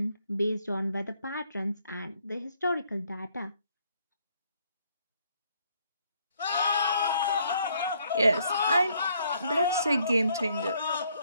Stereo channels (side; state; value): both; inverted; correlation -0.69